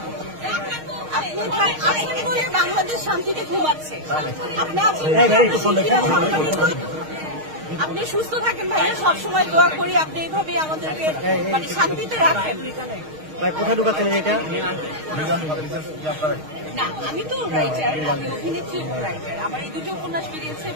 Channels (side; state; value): left; late; 6.4 ms